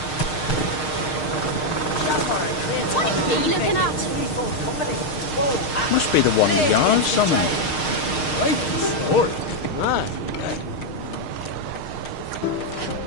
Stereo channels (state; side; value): late; right; 6.5 ms